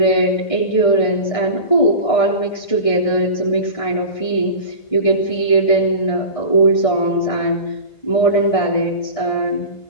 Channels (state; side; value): late; right; 1.6 ms